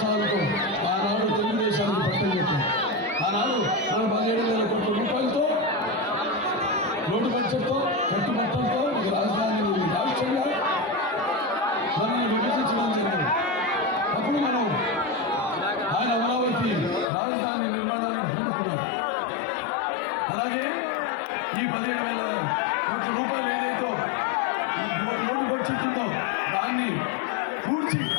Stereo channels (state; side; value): drops out; right; at 17.1 s